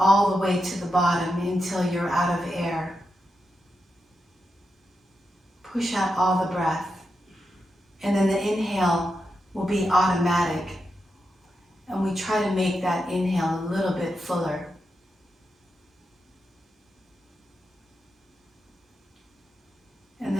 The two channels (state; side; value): normal; both; correlation 0.87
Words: the way to the bottom until you're out of air. Push out all the breath. And then the inhale will be automatic. And we try to make that inhale a little bit fuller. And